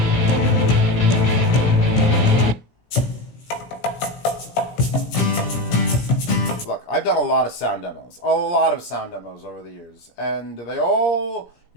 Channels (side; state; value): right; late; 17 ms